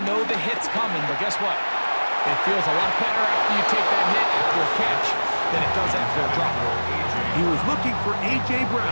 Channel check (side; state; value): both; inverted; correlation -1.00